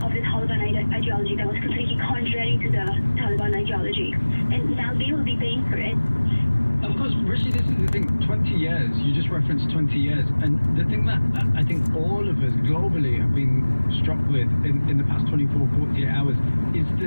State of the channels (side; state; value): both; inverted; correlation -1.00